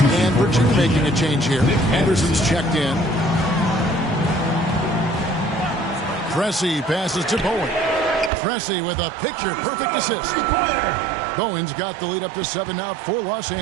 And Virginia making a change here. Anderson's checked in. Pressey passes to Bowen. Pressey with a picture-perfect assist. Bowen's got the lead up to 7 now for Los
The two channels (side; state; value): left; drops out; at 8.3 s